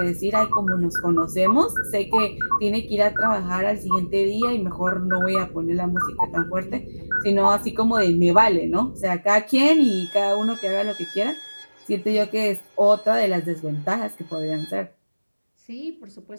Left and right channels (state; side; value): inverted; both; correlation -1.00